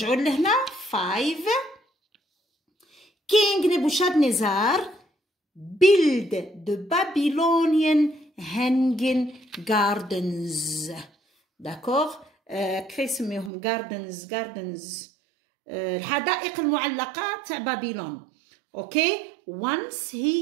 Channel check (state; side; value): drops out; left; at 13.5 s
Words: لهنا 5. King Nebuchadnezzar build the Babylonian hanging gardens. D'accord? كيف يسميهم gardens الحدائق المعلقة تاع بابلون. اوكي once